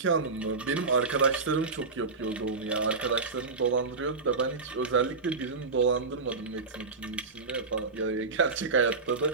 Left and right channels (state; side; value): quieter; left; 4.2 dB